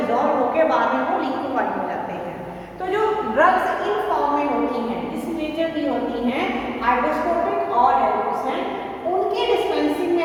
होकर बाद में वो लिक्विफाइड हो जाते हैं। तो जो ड्रग्स इन फॉर्म में होती हैं, इस नेचर की होती हैं, हाइड्रोस्कोपिक और डेलिक्वेसेंट, उनकी डिस्पेंसिंग में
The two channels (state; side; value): identical; both; correlation 1.00